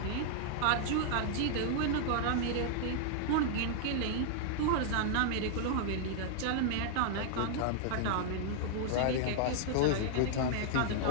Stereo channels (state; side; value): different; both; correlation -0.01